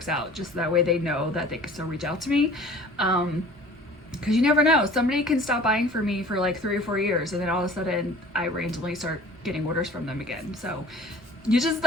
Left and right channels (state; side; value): normal; both; correlation 0.46